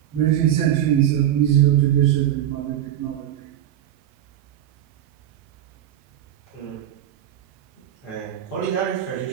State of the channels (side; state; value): left; quieter; 11.4 dB